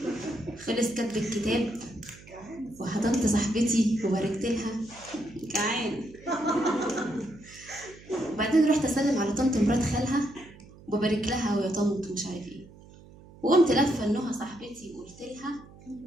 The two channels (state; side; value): noise; right; hum, 21 dB below the sound